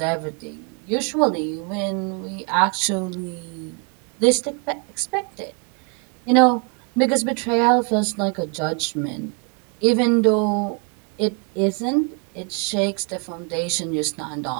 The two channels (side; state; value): left; quieter; 36.2 dB